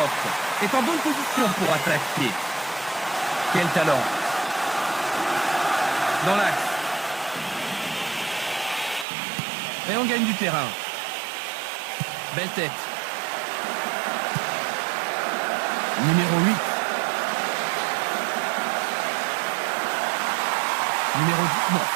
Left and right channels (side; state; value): left; drops out; at 9.1 s